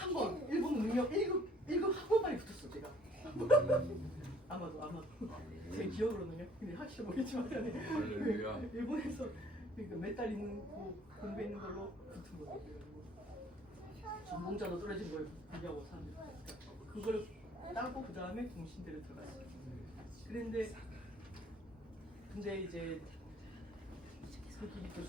번 일본어 능력 1급 한 번만에 붙었어 제가. 아마도 제 기억으로는요. 근데 확실히 모르겠지만 일본에서 그러니까 몇 달 있는 거 공부했는 걸로 붙은 거예요. 전공자도 떨어진 거예요. 비교하고 사람들이. 그러니까 그걸 따고 그 다음에 동신대를 들어갔어요. 근데 이제 그 길이 또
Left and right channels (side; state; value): both; normal; correlation 0.57